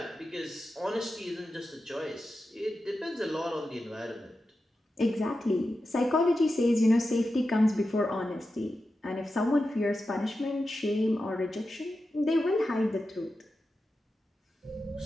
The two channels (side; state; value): both; normal; correlation 0.91